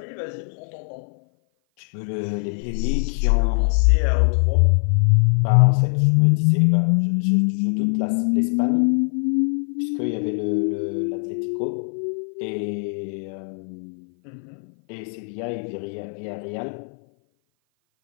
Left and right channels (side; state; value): right; silent; 57 dB below the other